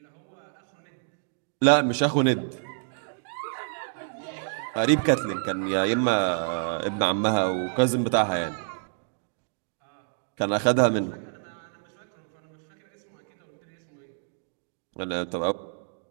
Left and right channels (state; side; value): silent; left; digital silence